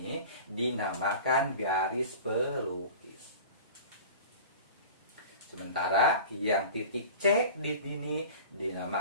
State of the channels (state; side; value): inverted; both; correlation -0.38